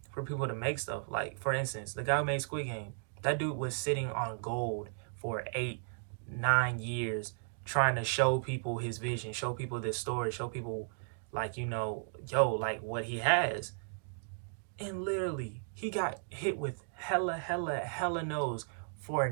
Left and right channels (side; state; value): left; silent; digital silence